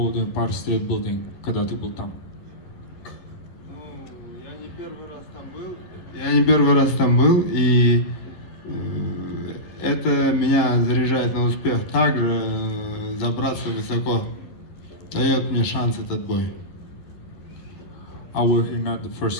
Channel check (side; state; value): right; late; 11 ms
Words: Empire State Building, когда ты был там? Я не первый раз там был, и это меня заряжает на успех. Также забраться высоко дает мне шанс этот бой. I were here not the